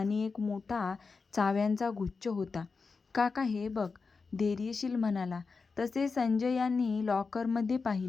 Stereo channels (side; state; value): right; quieter; 4.6 dB